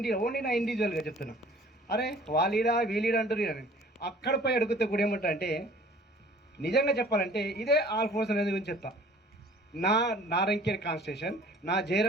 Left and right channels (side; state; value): both; normal; correlation 0.50